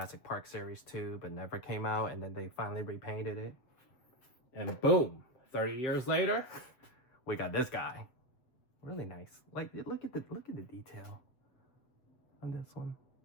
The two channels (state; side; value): late; right; 7.8 ms